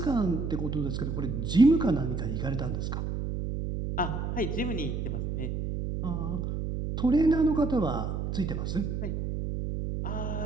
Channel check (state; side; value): noise; right; hum, 3 dB below the sound